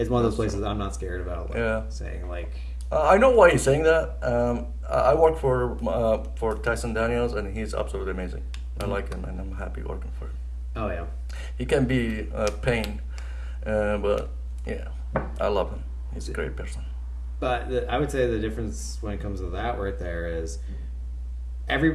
one of those places I'm not scared about. Like, saying like. I know why he's saying that. I work for Tyson Daniels, and he's absolutely amazing. I like him, and I'm happy working for him. Oh yeah. He can be a pain, but yeah, I love him. He's a great person. But I would say the difference when it comes to that right there is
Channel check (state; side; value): identical; both; correlation 1.00